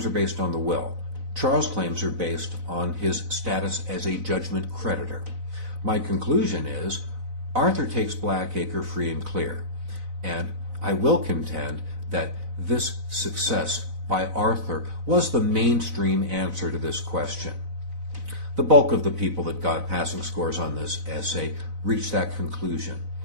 are based on the will. Charles' claims are based on his status as a judgment creditor. My conclusion is Arthur takes Blackacre free and clear, and I will contend that this success by Arthur was the mainstream answer to this question. The bulk of the people that got passing scores on this essay reached that conclusion,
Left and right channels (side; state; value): left; late; 4.0 ms